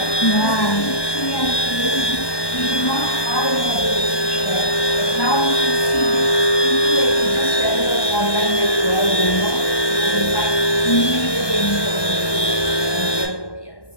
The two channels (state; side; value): late; right; 1.1 ms